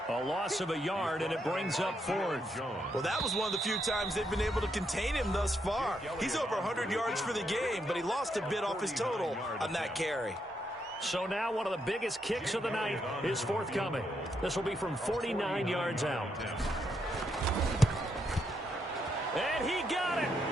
A loss of a yard, and it brings up fourth. Well, that was one of the few times they've been able to contain him thus far. He's over 100 yards for the game, but he lost a bit off his total on that carry. So now one of the biggest kicks of the night is forthcoming. This will be from 49 yards out. And he got it.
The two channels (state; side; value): normal; both; correlation 0.79